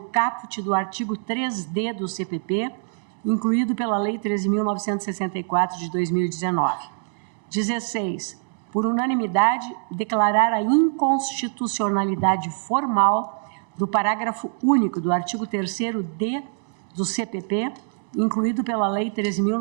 do artigo 3D do CPP, incluído pela Lei 13.964 de 2019. 16. Por unanimidade, declarar a inconstitucionalidade formal do parágrafo único do artigo 3º-D do CPP, incluído pela Lei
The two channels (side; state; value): left; silent; digital silence